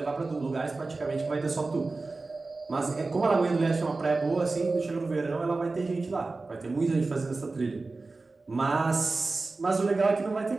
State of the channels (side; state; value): left; quieter; 3.6 dB